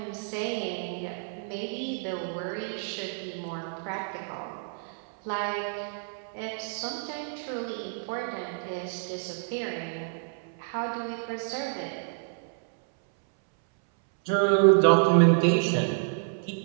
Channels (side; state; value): left; silent; 59 dB below the other